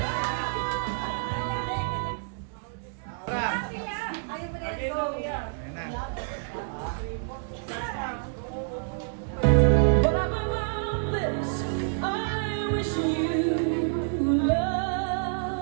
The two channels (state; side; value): silent; left; digital silence